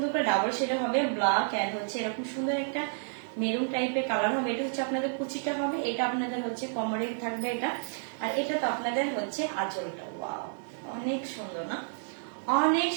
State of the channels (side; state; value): left; silent; digital silence